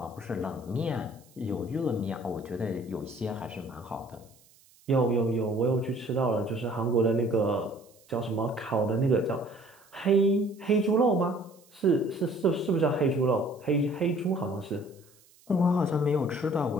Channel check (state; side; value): noise; right; hiss, 29 dB below the sound